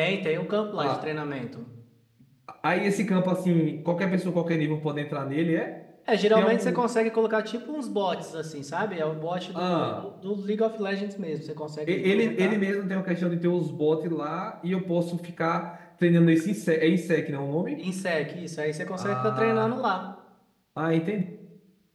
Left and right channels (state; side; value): identical; both; correlation 1.00